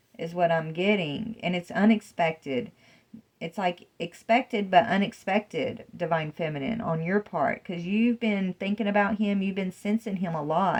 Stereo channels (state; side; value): identical; both; correlation 1.00